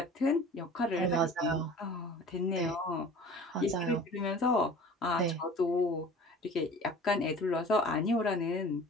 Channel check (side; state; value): both; normal; correlation 0.43